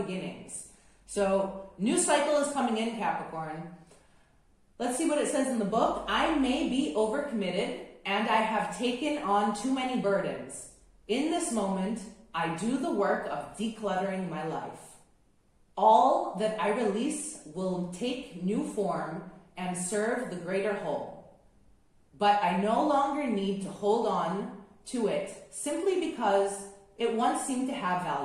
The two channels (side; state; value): both; identical; correlation 1.00